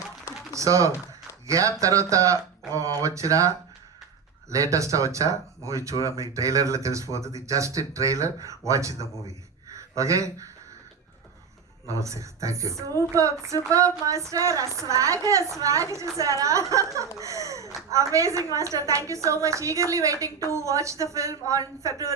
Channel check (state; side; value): quieter; left; 6.0 dB